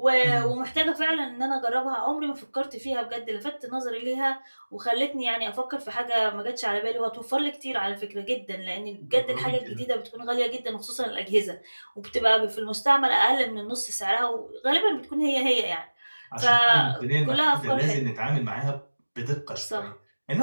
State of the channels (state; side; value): inverted; both; correlation -1.00